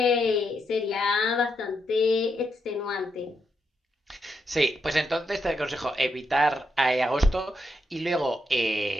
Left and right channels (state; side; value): normal; both; correlation 0.82